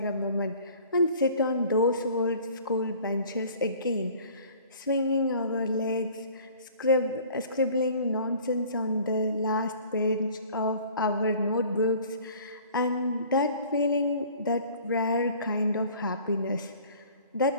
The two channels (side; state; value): both; inverted; correlation -0.49